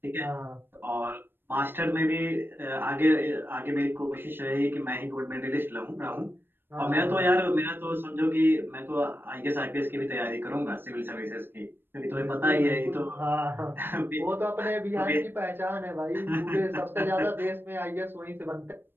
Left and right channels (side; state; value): left; late; 0.098 ms